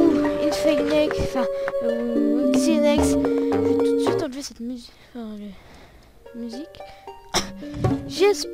Infinix, enfin Xenex. Je vais tout de suite enlever cette musique.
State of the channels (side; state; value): both; identical; correlation 1.00